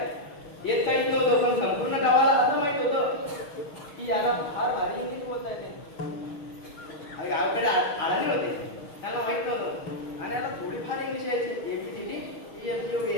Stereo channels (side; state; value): right; late; 6.4 ms